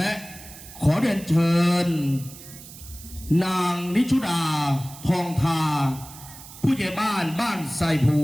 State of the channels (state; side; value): noise; right; hiss, 17 dB below the sound